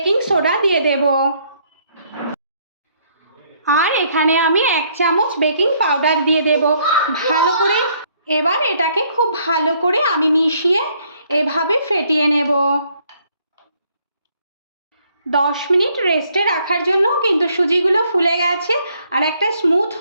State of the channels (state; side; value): inverted; both; correlation -0.67